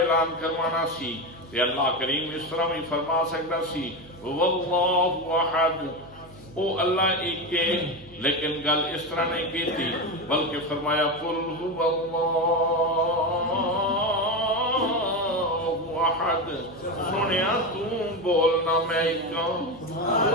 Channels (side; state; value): right; noise; hum, 23 dB below the sound